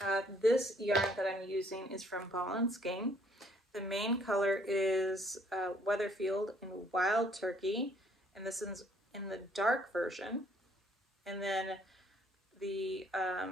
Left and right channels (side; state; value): both; normal; correlation 0.63